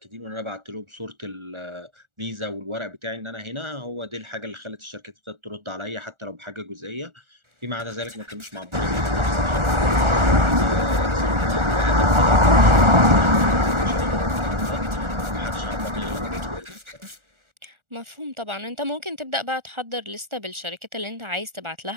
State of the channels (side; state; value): left; late; 1.4 ms